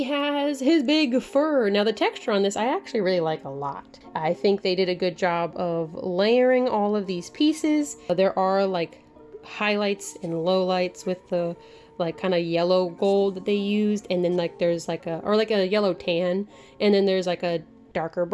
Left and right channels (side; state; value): both; identical; correlation 1.00